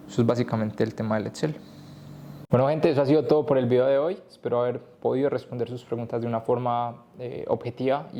Eso es básicamente el tema del Excel. Bueno, gente, eso ha sido todo por el video de hoy. Espero haber podido responder sus preguntas de una forma objetiva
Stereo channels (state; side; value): identical; both; correlation 1.00